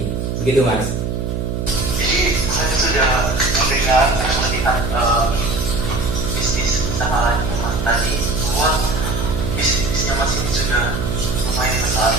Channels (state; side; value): noise; right; hum, 2 dB below the sound